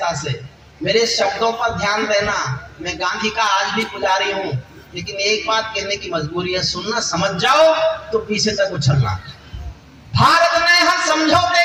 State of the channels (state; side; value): identical; both; correlation 1.00